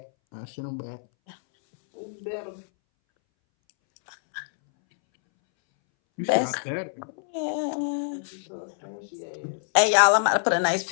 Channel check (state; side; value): silent; right; 61 dB below the other